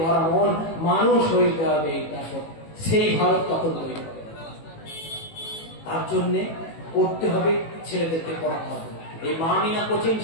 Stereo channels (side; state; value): right; late; 18 ms